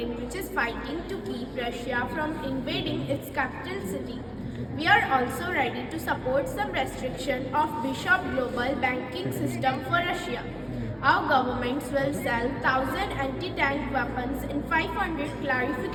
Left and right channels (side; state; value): both; identical; correlation 1.00